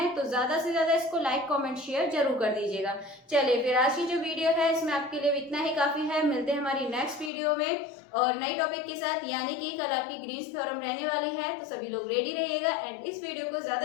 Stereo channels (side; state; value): right; drops out; at 7.3 s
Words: तो ज्यादा से ज्यादा इसको लाइक कमेंट शेयर जरूर कर दीजिएगा। चलिए फिर आज की जो वीडियो है इसमें आपके लिए इतना ही काफी है, मिलते हैं हमारी नेक्स्ट वीडियो में और नई टॉपिक के साथ, यानी कि कल आपकी ग्रीन्स थ्योरम रहने वाली है। तो सभी लोग रेडी रहिएगा एंड इस वीडियो को